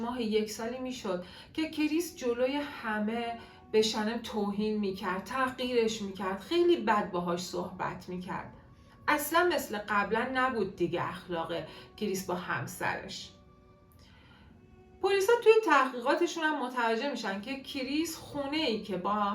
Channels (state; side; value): identical; both; correlation 1.00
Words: 1 سالی میشد که کریس جلوی همه به شنم توهین میکرد، تحقیرش میکرد، خیلی بد باهاش صحبت میکرد. اصلا مثل قبلا نبود دیگه اخلاق کریس با همسرش. پلیسا توی تحقیقاتشون هم متوجه میشن که کریس خونه ای که با